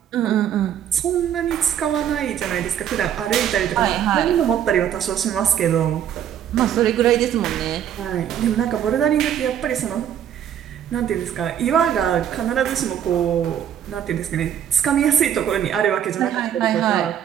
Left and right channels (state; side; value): quieter; left; 9.7 dB